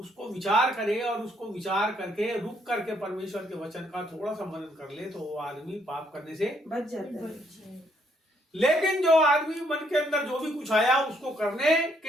विचार करे और उसको विचार करके रुक करके परमेश्वर के वचन का थोड़ा सा मनन कर ले, तो वो आदमी पाप करने से बच जाता है। लेकिन जो आदमी मन के अंदर जो भी कुछ आया उसको करने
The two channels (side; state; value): both; normal; correlation 0.70